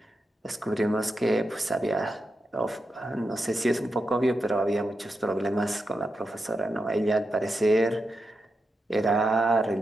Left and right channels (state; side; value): normal; both; correlation 0.88